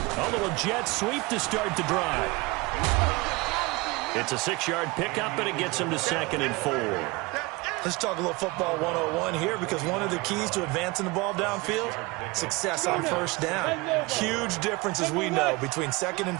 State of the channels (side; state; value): left; quieter; 24.1 dB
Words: a little jet sweep to start the drive. It's a 6-yard pickup, but it gets him to 2nd and 4. Let's talk a little football 101 here, because one of the keys to advancing the ball downfield, success on first down. Huge difference, as we know, between 2nd and